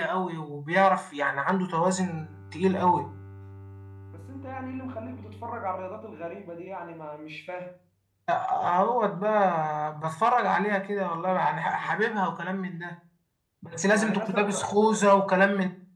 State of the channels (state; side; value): identical; both; correlation 1.00